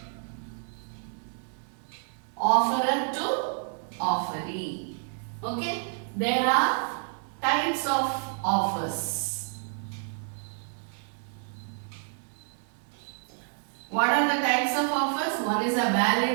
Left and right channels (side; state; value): left; silent; 59 dB below the other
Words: offerer to offeree. Okay. There are types of offers. What are the types of offers? One is a